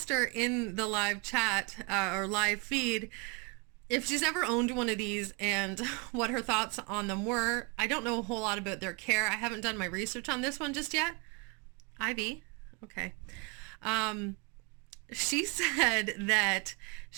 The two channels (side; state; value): left; quieter; 29.0 dB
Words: her in the live chat or live feed if she's ever owned one of these and what her thoughts on them were. I don't know a whole lot about their care. I haven't done my research on this one just yet. Ivy, okay. She said that